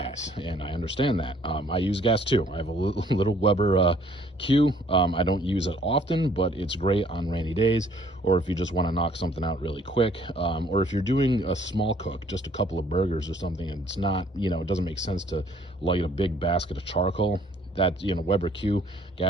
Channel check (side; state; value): both; normal; correlation 0.60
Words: and I understand that. I use gas too. I have a little Weber Q. I don't use it often, but it's great on rainy days, or if you just want to knock something out really quick, or if you're doing a small cook, just a couple of burgers or something, and it's not, it doesn't make sense to light a big basket of charcoal. That Weber Q